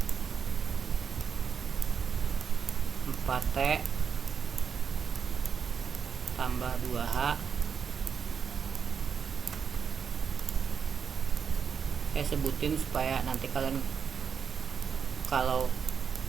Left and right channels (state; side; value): quieter; left; 6.6 dB